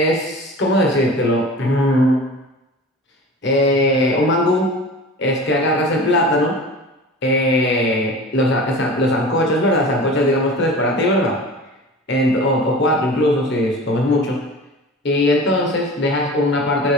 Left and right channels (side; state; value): both; normal; correlation 0.37